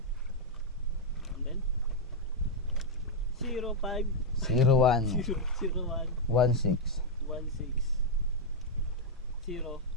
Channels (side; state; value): both; normal; correlation -0.02